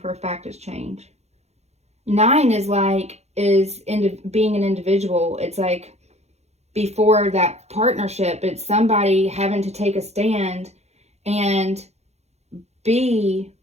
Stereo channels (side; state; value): left; late; 0.31 ms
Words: a fact, is change. 9 is being an individual. It's like before that partnership, it's somebody having to take a stand and be